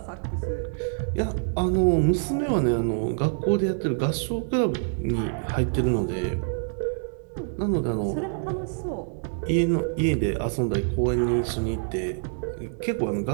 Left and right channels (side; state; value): left; silent; digital silence